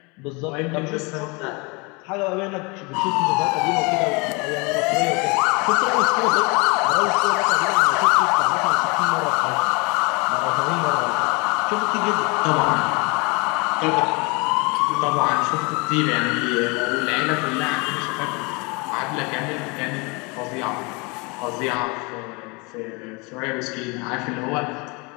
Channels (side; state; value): right; quieter; 28.7 dB